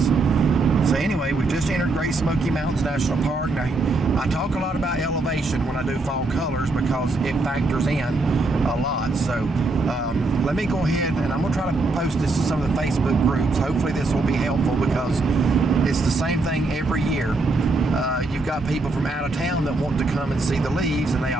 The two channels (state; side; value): quieter; left; 3.2 dB